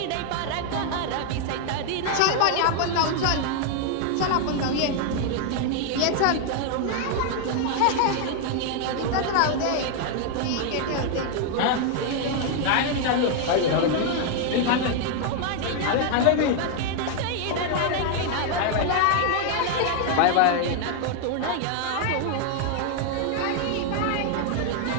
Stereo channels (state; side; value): different; both; correlation 0.00